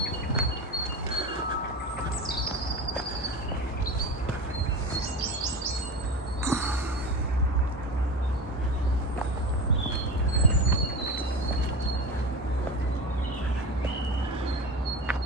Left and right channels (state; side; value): normal; both; correlation 0.27